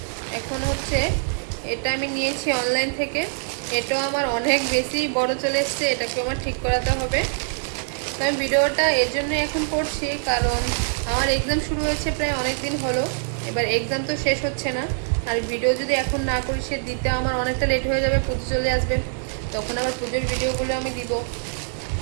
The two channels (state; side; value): silent; left; 63 dB below the other